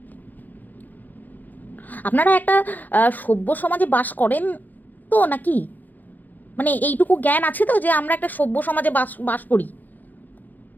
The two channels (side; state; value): right; late; 0.084 ms